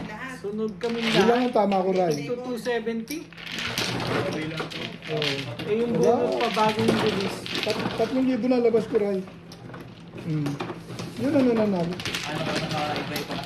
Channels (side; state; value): both; identical; correlation 1.00